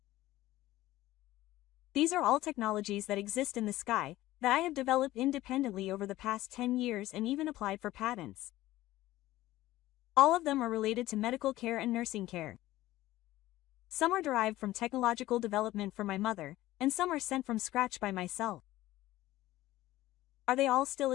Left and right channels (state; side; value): quieter; right; 16.2 dB